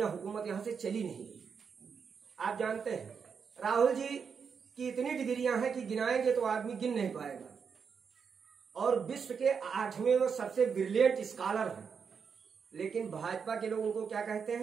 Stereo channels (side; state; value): left; quieter; 6.3 dB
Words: हुकूमत यहां से चली नहीं। आप जानते हैं राहुल जी की इतनी डिग्रियां हैं कि गिनाएंगे तो आदमी गिन नहीं पाएगा, और विश्व के 8वें वो सबसे ब्रिलियंट स्कॉलर हैं। लेकिन भाजपा के लोग उनको क्या कहते